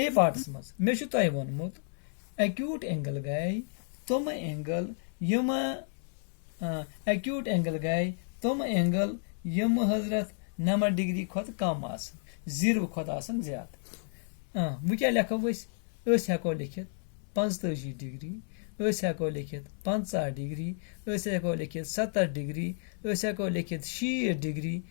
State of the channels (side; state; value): right; silent; digital silence